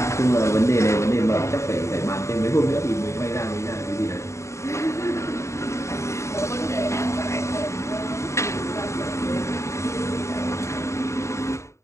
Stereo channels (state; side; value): late; right; 0.14 ms